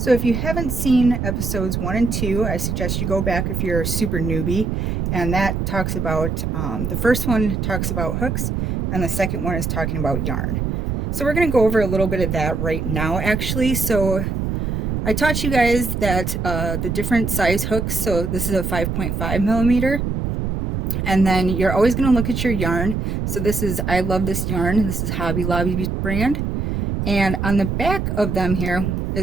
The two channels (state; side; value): noise; right; rumble, 2 dB below the sound